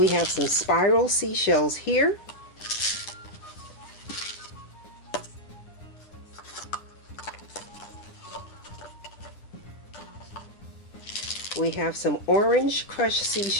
have some spiral seashells here. We have some orange crushed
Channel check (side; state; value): right; late; 9.8 ms